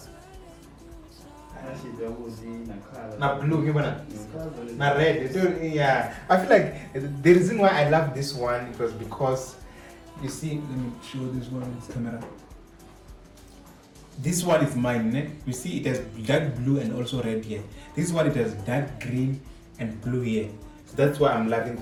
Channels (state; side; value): identical; both; correlation 1.00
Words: Na blue, na red. Yeah, I feel like the reason why I love this one it was because you see. Let me show this one on this camera. This one is mine, né? You see it has dark blue and also red here. This one it has dark green and blue here. So that's why I'm loving